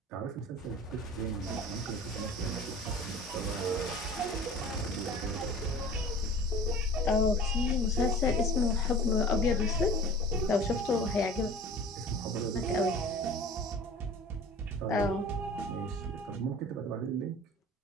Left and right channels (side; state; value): both; normal; correlation 0.42